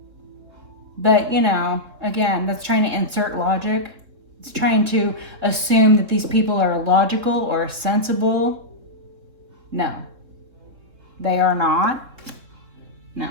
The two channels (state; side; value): late; left; 3.7 ms